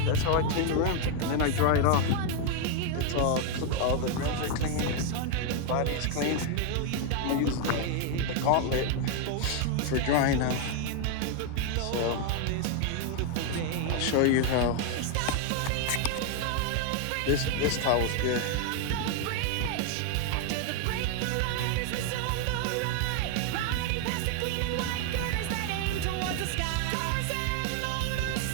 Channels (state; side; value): different; both; correlation 0.00